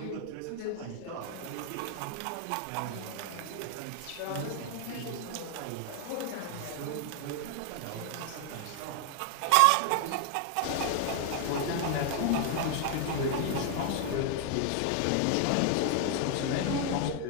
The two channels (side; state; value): both; different; correlation 0.00